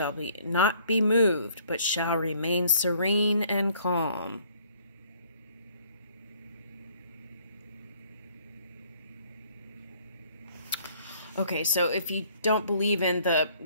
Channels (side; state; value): both; inverted; correlation -0.60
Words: not be moved, but shall remain serene and calm. Okay, so if you don't believe in the